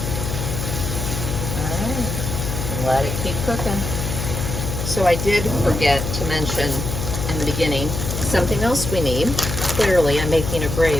Alright, let it keep cooking. So I did forget to mention in the beginning, something else we need. Clearly, I'm making a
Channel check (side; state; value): left; noise; hum, 4 dB below the sound